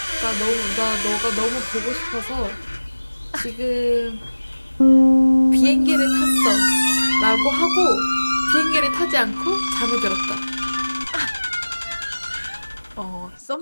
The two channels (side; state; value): both; inverted; correlation -1.00